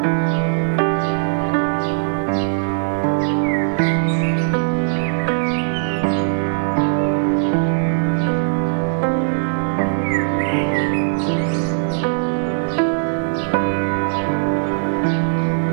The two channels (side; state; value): left; silent; digital silence